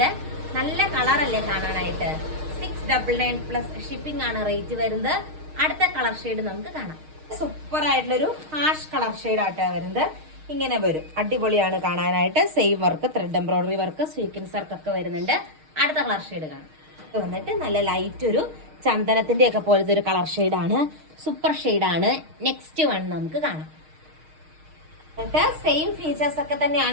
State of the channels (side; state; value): left; late; 6.5 ms